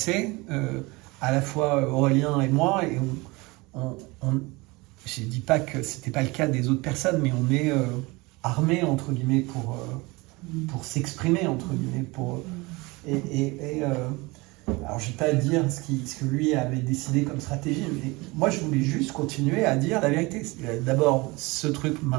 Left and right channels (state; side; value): quieter; left; 24.0 dB